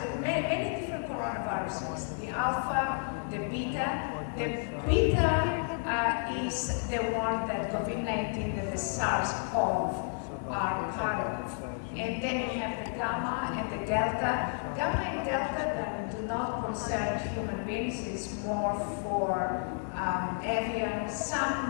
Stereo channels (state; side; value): silent; right; 57 dB below the other